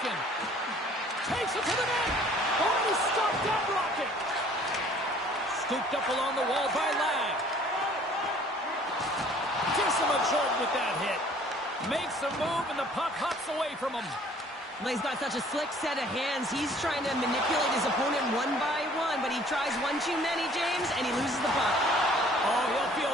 Takes it to the net. Oh, he stopped that rocket. Scooped up along the wall by Ladd. Gives him a jolt with that hit. Makes a move and the puck hops away from him. Well, he's got such a slick set of hands. He's trying to manipulate his opponent one by one, but he tries one too many, James, and he loses the puck. Oh, he'll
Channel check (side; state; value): both; normal; correlation 0.55